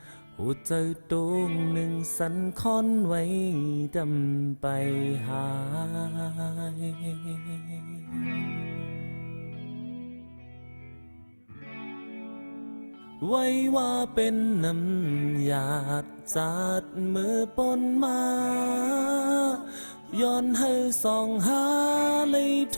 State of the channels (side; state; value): both; inverted; correlation -1.00